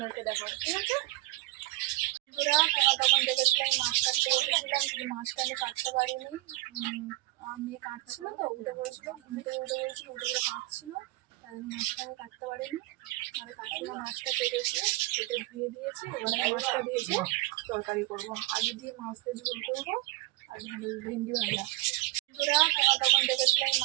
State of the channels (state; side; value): quieter; left; 18.8 dB